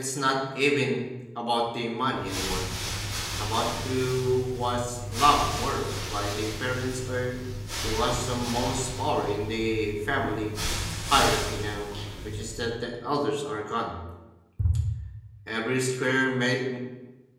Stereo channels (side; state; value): both; identical; correlation 1.00